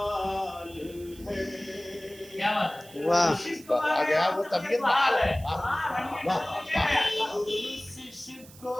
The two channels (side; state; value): right; noise; hiss, 21 dB below the sound